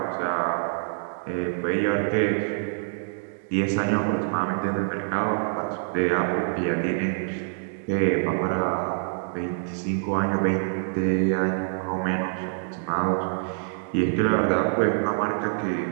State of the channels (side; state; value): left; silent; digital silence